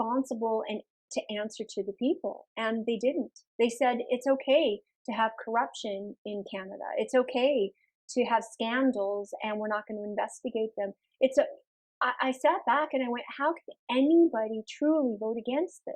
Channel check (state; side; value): identical; both; correlation 1.00